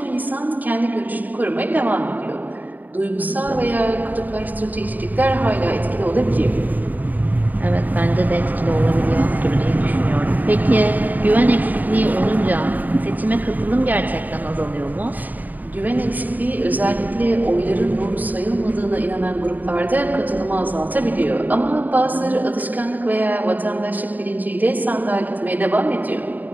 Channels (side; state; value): left; late; 0.083 ms